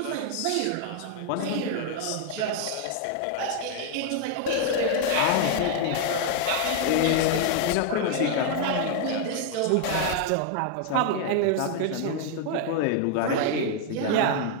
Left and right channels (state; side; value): different; both; correlation 0.00